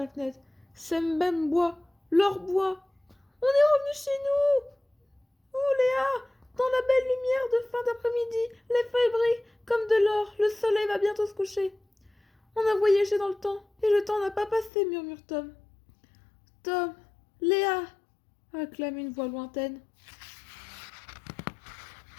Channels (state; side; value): drops out; right; at 14.7 s